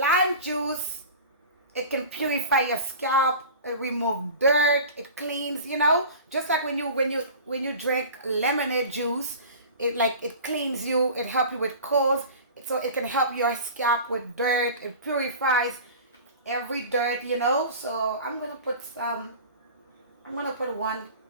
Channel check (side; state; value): both; inverted; correlation -0.37